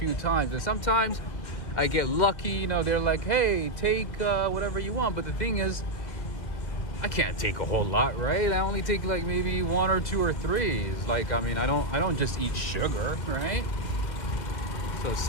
times. And sometimes I get lucky. You know, they're like, "Hey, take whatever you want." But the thing is, I can't take a whole lot, right? I only take like maybe 1 or 2 or 3. Like, I mean, I don't just eat sugar, right? So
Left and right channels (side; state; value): right; late; 1.9 ms